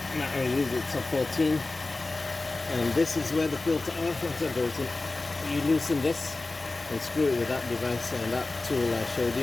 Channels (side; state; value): right; quieter; 3.3 dB